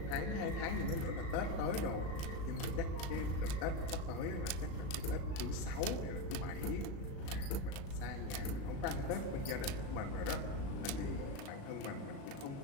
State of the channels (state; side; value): late; right; 36 ms